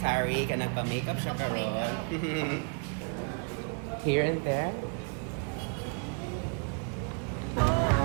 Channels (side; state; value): left; quieter; 37.4 dB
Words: ka nagpa-makeup siya karon. Here and there.